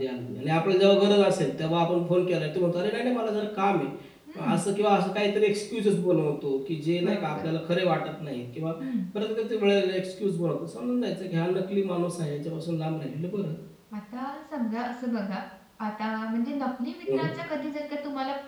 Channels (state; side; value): identical; both; correlation 1.00